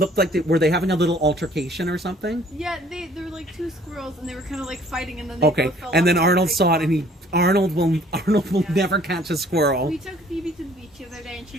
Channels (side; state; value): both; normal; correlation 0.57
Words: like were they having a little altercation or something? Yeah, they were like two squirrels, and they were kind of like fighting, and then they both fell and then off Arnold the saw it, and Arnold will Yeah. never catch a squirrel. We took Phoebe to the beach the other day, and she